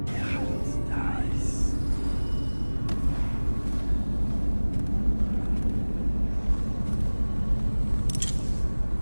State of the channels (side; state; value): both; inverted; correlation -1.00